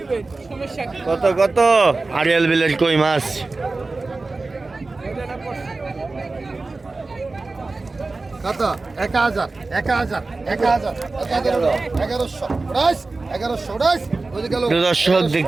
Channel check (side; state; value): left; quieter; 3.5 dB